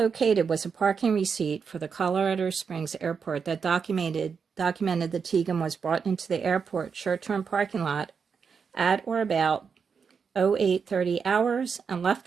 was a parking receipt for the Colorado Springs Airport that documented that Tegan was brought into the airport short-term parking lot at or about 08:30 hours and left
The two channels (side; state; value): left; quieter; 6.0 dB